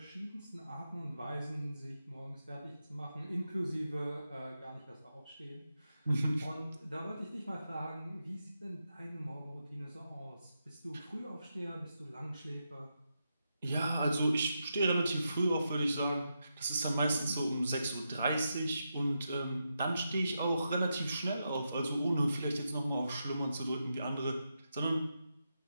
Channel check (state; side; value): inverted; both; correlation -0.86